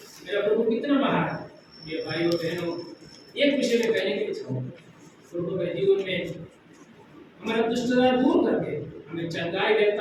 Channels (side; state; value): both; identical; correlation 1.00